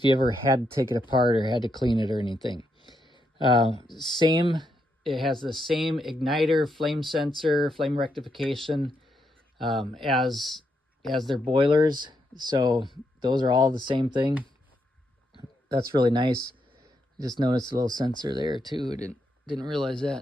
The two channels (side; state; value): both; normal; correlation 0.80